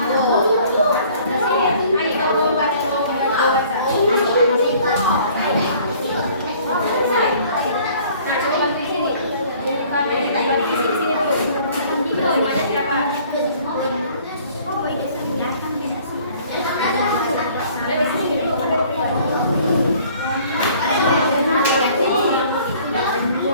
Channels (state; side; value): inverted; both; correlation -0.54